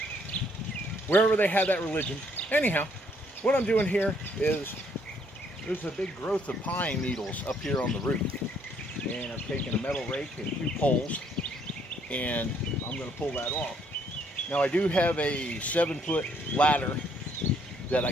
Wherever they have that religion. Anyhow, what I'm doing here is there's a big growth of pine needles up here on the roof. And I've taken a metal rake and 2 poles, and I'm going to pull that off. Now, I do have a 7-foot ladder that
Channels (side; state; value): both; normal; correlation 0.67